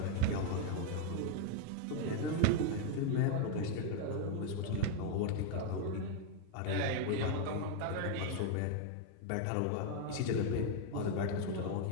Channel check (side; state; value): both; different; correlation 0.00